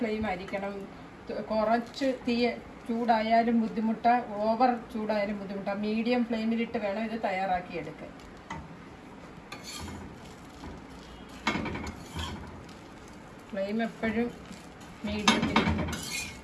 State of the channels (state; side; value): identical; both; correlation 1.00